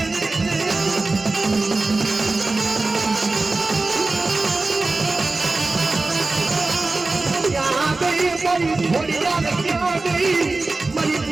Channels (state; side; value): quieter; left; 3.4 dB